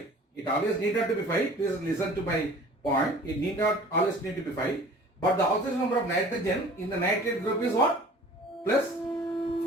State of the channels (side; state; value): both; normal; correlation 0.46